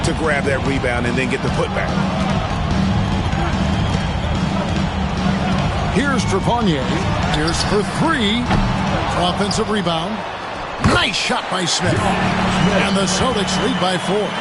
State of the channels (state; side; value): identical; both; correlation 1.00